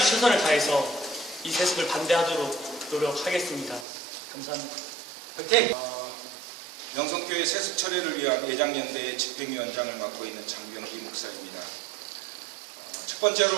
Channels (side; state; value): left; drops out; at 3.9 s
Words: 최선을 다해서 이 세습을 반대하도록 노력하겠습니다. 감사합니다. 명성교회 세습 처리를 위한 예장연대의 집행위원장을 맡고 있는 장병기 목사입니다. 첫